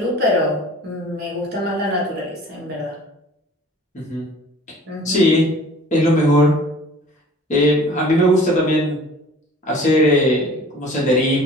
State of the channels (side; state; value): both; normal; correlation 0.47